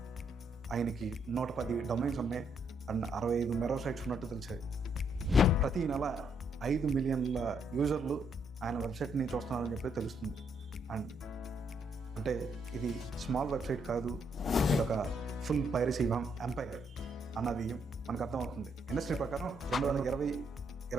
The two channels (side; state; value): both; normal; correlation 0.74